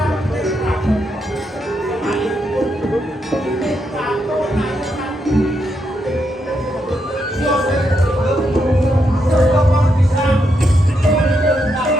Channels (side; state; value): both; normal; correlation 0.81